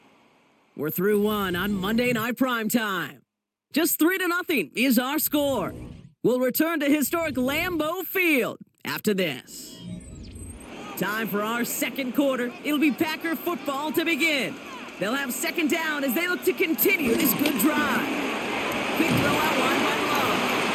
We're through 1 on Monday Night Primetime. Just 3-0 is our score. We'll return to historic Lambeau Field after this. Time for our 2nd quarter. It'll be Packer football to begin. They'll have 2nd down as they look to continue this good drive. Quick throw out line by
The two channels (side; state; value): both; identical; correlation 1.00